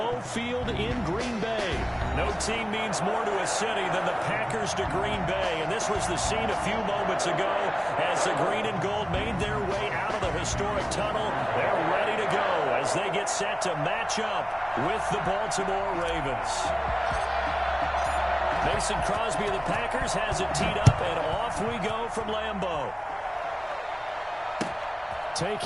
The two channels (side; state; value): both; identical; correlation 1.00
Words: Field in Green Bay. No team means more to a city than the Packers to Green Bay, and this was the scene a few moments ago as the green and gold made their way out of the historic tunnel. They're ready to go as they get set to match up with the Baltimore Ravens. Mason Crosby of the Packers has it teed up, and off we go from Lambeau.